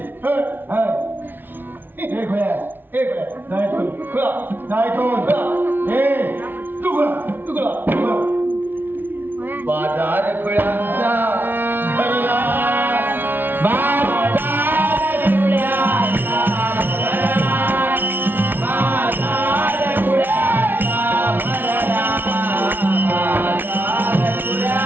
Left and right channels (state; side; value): late; left; 0.096 ms